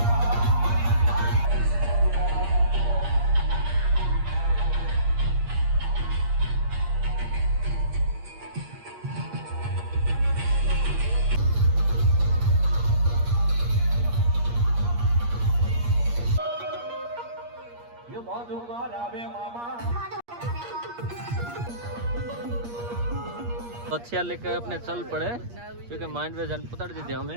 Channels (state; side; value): late; left; 8.5 ms